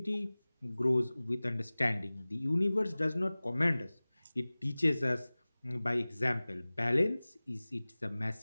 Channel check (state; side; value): inverted; both; correlation -0.99